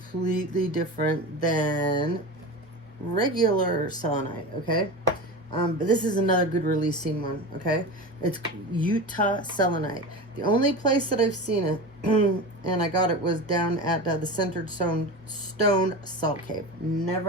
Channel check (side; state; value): both; normal; correlation 0.27